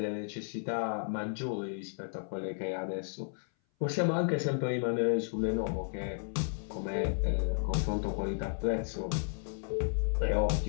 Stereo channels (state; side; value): silent; right; 56 dB below the other